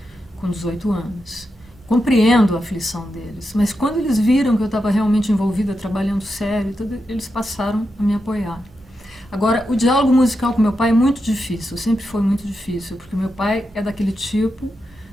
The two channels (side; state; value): both; normal; correlation 0.87